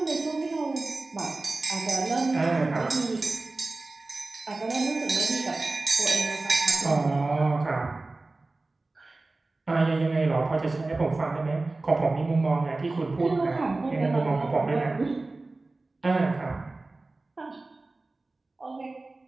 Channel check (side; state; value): left; quieter; 3.2 dB